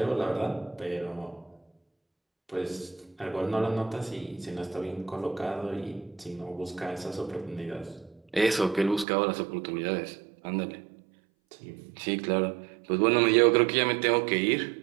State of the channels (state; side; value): drops out; left; at 9.1 s